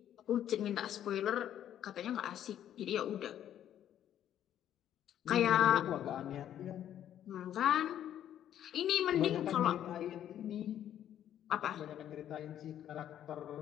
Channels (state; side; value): quieter; right; 10.8 dB